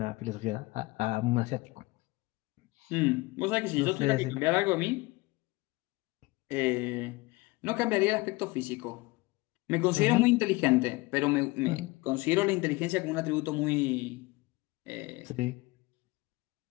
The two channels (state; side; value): quieter; right; 22.4 dB